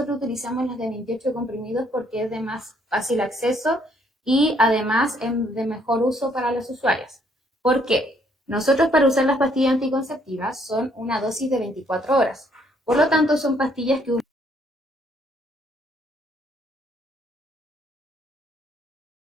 utilizamos las de 28 comprimidos porque es de más fácil acceso y además es de mejor uso para los usuarios. ¿Por qué? Nosotros para usar las pastillas anticonceptivas son una dosis de 24 horas. Por lo tanto, son pastillas que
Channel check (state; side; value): normal; both; correlation 0.67